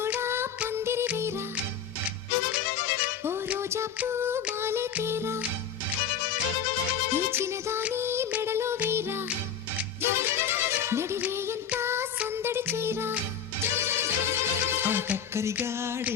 పందిరి వేరా, ఓ రోజా పూ మాలే తేరా, ఈ చిన్నదాని మెడలో వేరా, నడివే ఎంత సందడి చేరా. ఆ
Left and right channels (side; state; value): right; quieter; 7.4 dB